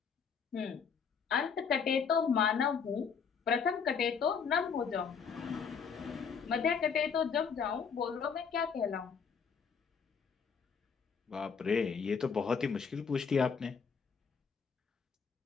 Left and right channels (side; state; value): right; quieter; 6.2 dB